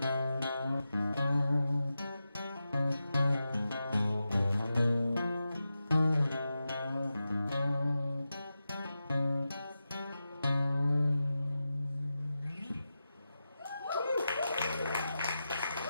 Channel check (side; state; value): both; inverted; correlation -0.91